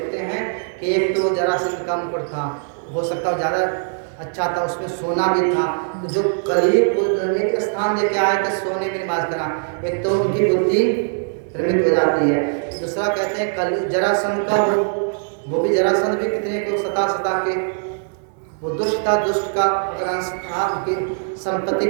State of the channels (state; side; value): silent; left; digital silence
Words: हैं कि एक तो जरासंध का मुकुट था, हो सकता है ज़्यादा अच्छा था, उसमें सोना भी था। तो जो करीब एक स्थान लेके आए थे सोने में निवास करा, एक तो उनकी बुद्धि भ्रमित हो जाती है। दूसरा कहते हैं कल जरासंध का वो भी जरासंध भी कितने को सता के वो दुष्ट था, दुष्ट का अगर अंश था, उनकी संपत्ति